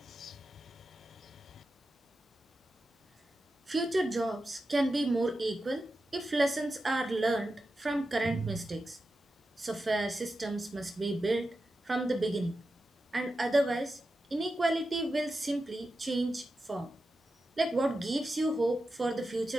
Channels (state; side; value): normal; both; correlation 0.91